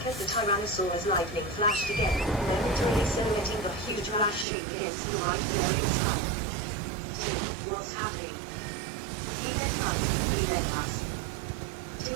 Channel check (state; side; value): drops out; left; at 4.5 s